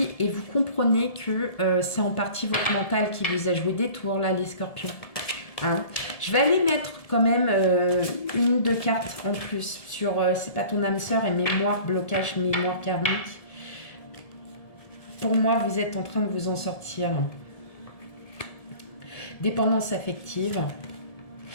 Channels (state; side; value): late; right; 1.7 ms